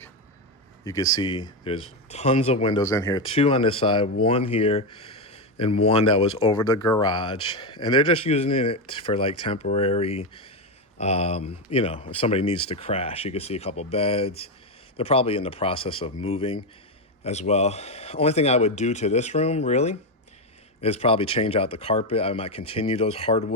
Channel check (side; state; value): both; normal; correlation 0.09